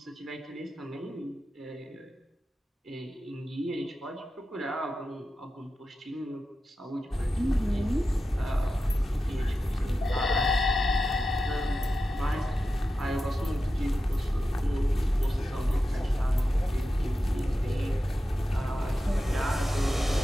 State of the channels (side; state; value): both; normal; correlation 0.92